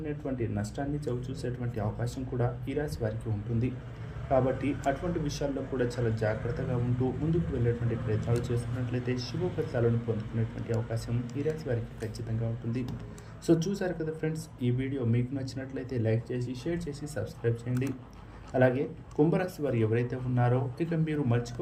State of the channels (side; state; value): both; identical; correlation 1.00